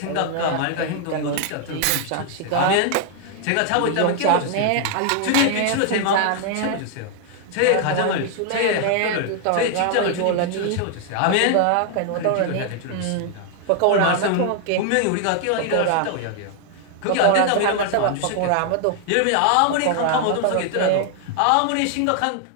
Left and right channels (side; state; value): both; different; correlation 0.00